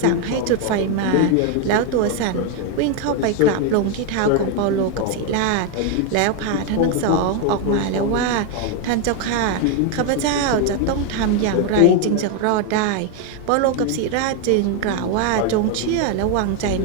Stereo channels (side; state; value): both; different; correlation 0.01